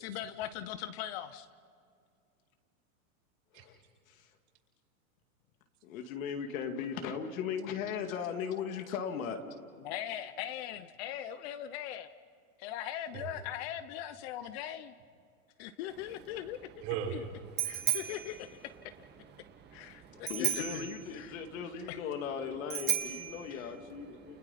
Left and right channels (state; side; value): normal; both; correlation 0.11